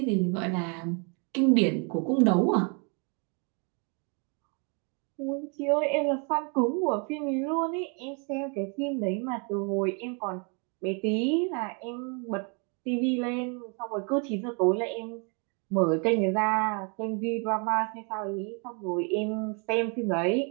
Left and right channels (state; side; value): quieter; left; 35.9 dB